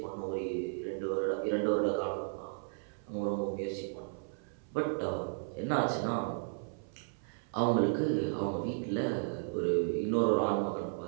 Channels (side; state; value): left; silent; 55 dB below the other